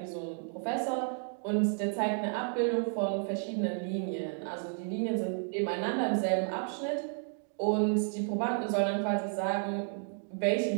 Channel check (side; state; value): left; silent; 56 dB below the other